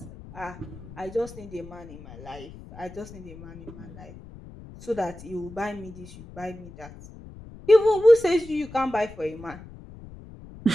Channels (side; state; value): left; noise; rumble, 16 dB below the sound